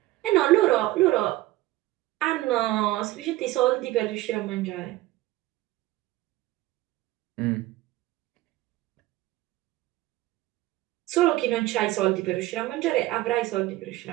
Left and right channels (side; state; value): left; quieter; 17.3 dB